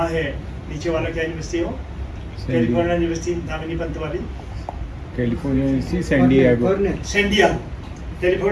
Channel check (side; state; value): both; identical; correlation 1.00